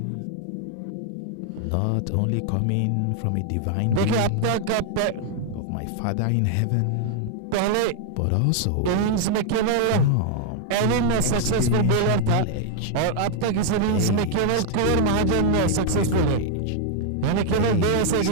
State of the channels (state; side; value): different; both; correlation 0.00